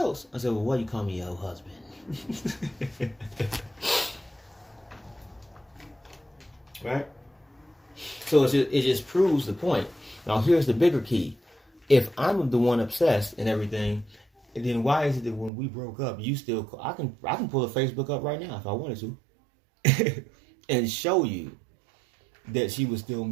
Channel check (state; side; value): drops out; left; at 15.5 s